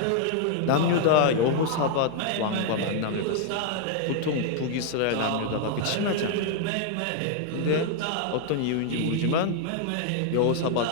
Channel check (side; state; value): both; different; correlation 0.00